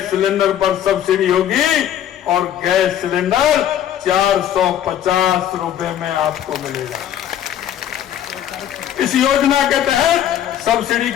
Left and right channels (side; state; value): right; quieter; 10.7 dB